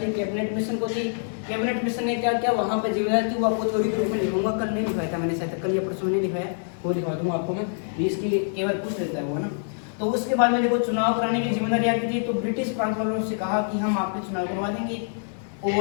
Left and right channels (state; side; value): silent; right; digital silence